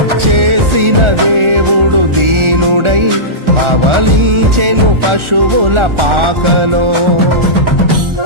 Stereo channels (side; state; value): left; late; 1.4 ms